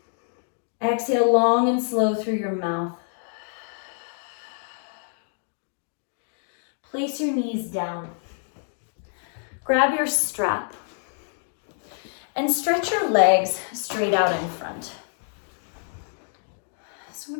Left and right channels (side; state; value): right; silent; 57 dB below the other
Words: Exhale long and slow through your mouth. Place your knees down. Grab your strap and stretch your legs straight out in front. So I'm